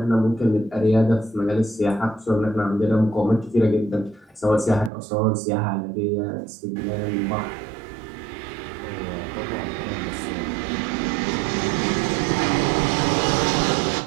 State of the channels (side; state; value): left; drops out; at 4.9 s